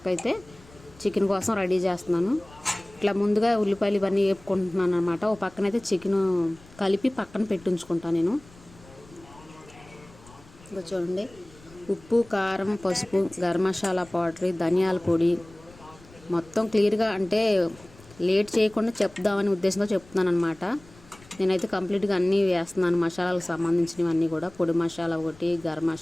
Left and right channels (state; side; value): noise; left; rumble, 24 dB below the sound